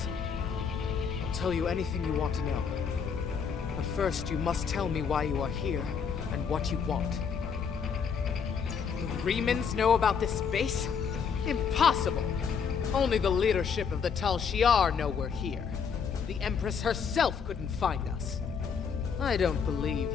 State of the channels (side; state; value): right; quieter; 6.5 dB